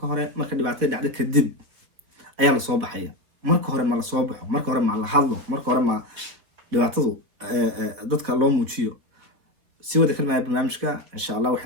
hore marka dhibaatada dhacdo kadib ayaa la soo baxaya marka hore ma la soo baxo marka hore ma la hadlo marka hore ma dhibaatadu dadka loo muujiyo si wada kalmaya barnaamijka insha allah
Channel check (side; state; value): left; late; 3.9 ms